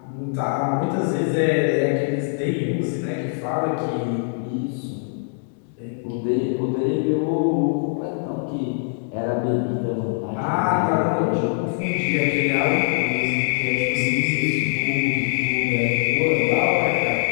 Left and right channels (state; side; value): silent; right; digital silence